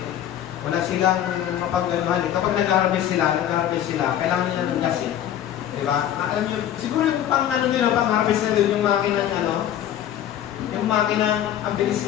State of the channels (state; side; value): quieter; right; 11.0 dB